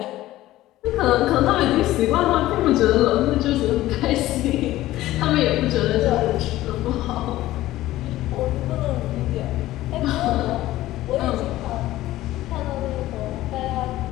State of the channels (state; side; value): quieter; right; 15.7 dB